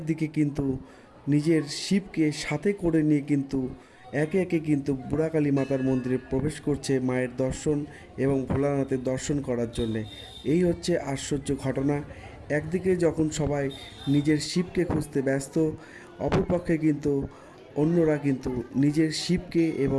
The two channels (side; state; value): both; identical; correlation 1.00